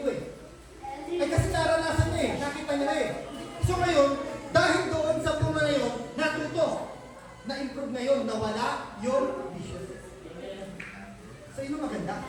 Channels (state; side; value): identical; both; correlation 1.00